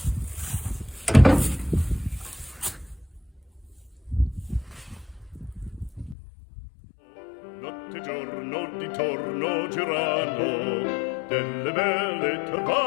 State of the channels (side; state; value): right; drops out; at 6.2 s